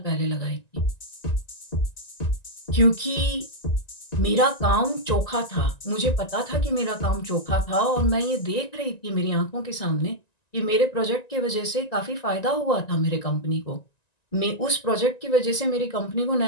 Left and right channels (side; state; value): right; late; 1.9 ms